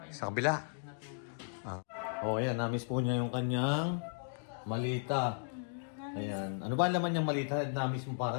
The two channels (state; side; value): silent; right; digital silence